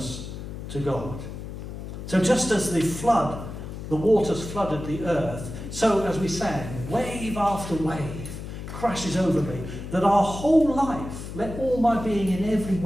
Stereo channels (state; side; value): noise; left; hum, 9 dB below the sound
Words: to God. So just as the flood, the waters flooded the earth, so as we sang, wave after wave crashes over me, that our whole life, let all my being in every